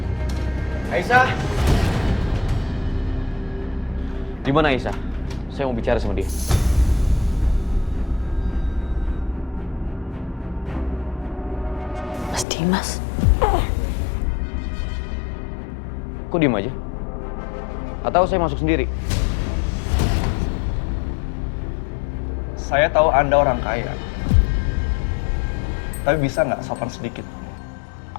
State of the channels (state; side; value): drops out; right; at 12.5 s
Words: Aisyah! Di mana Aisyah? Saya mau bicara sama dia. Mas Dimas. Kok diem aja? Atau saya masuk sendiri? Saya tahu Anda orang kaya. Tapi bisa nggak sopan sedikit?